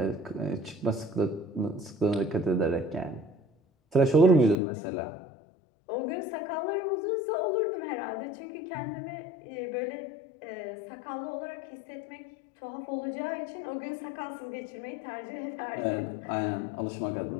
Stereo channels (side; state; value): right; drops out; at 4.5 s